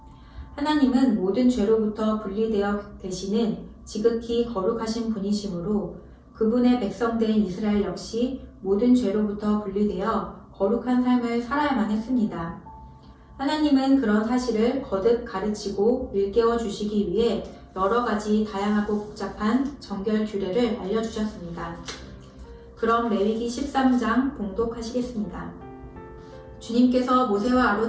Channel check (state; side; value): identical; both; correlation 1.00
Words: 하나님은 모든 죄로부터 분리되어 계시는 지극히 거룩하신 분이시므로 그분의 백성된 이스라엘 역시 모든 죄로부터 분리되어 거룩한 삶을 살아야만 했습니다. 하나님은 그런 사실을 거듭 가르치고 일깨워 주시기 위해 여러 가지 다양하고 복잡한 정결 규례를 알려주셨습니다. 그럼 레위기 13장 봉독하시겠습니다. 주님께서 모세와